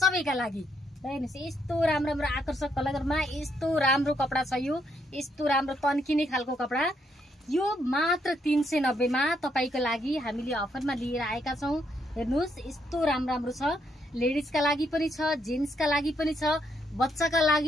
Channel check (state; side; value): normal; both; correlation 0.75